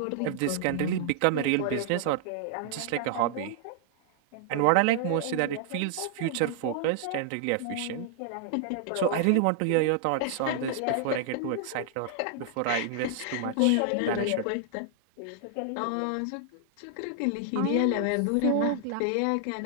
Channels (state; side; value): different; both; correlation -0.01